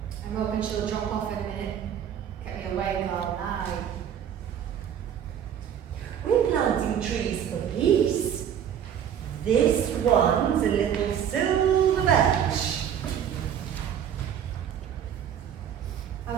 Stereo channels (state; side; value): quieter; left; 9.1 dB